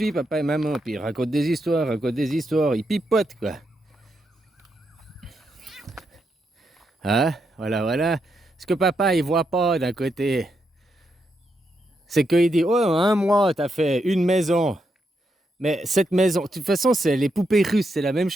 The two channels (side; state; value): both; normal; correlation 0.82